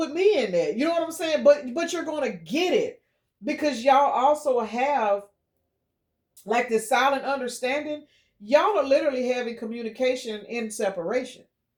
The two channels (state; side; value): identical; both; correlation 1.00